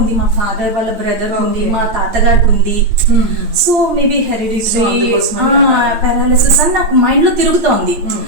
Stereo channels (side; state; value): left; late; 9.0 ms